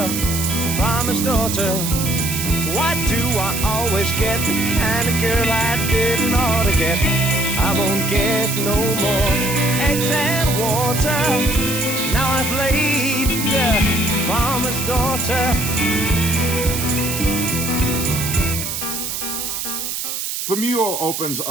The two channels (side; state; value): right; noise; hiss, 4 dB below the sound